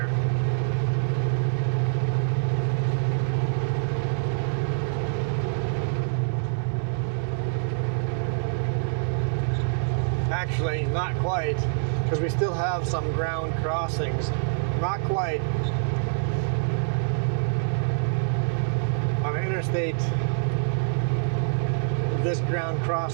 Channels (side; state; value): left; silent; digital silence